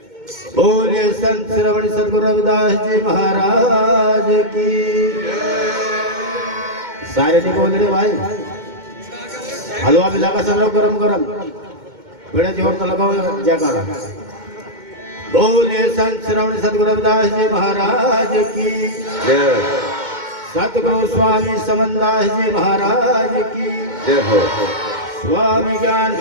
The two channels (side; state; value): left; late; 2.2 ms